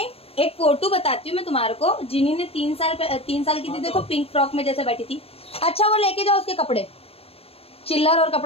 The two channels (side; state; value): right; late; 0.28 ms